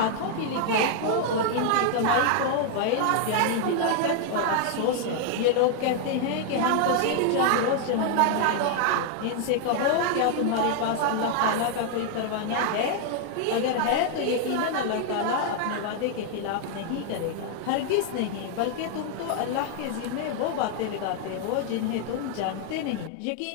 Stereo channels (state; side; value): different; both; correlation 0.00